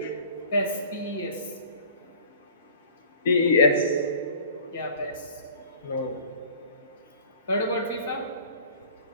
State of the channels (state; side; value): inverted; both; correlation -0.46